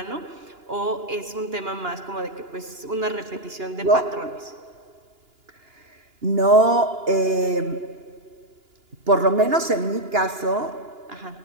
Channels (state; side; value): late; left; 2.9 ms